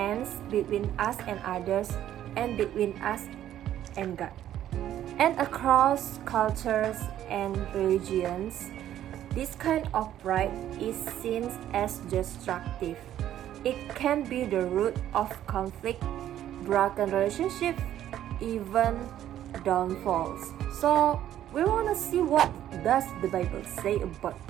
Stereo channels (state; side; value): quieter; left; 11.8 dB